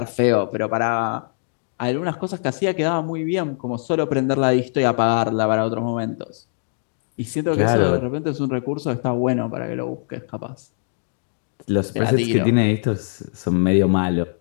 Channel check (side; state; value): right; silent; digital silence